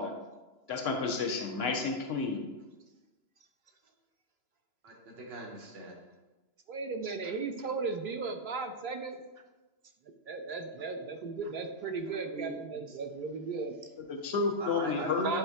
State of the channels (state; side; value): late; left; 3.0 ms